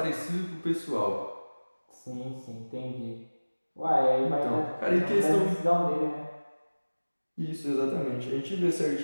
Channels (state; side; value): inverted; both; correlation -1.00